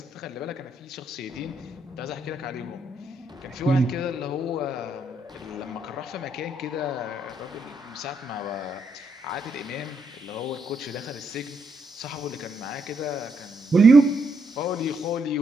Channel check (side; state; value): both; normal; correlation 0.77